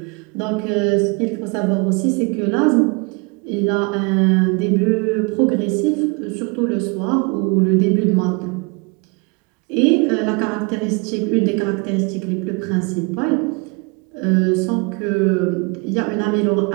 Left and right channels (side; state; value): left; quieter; 30.1 dB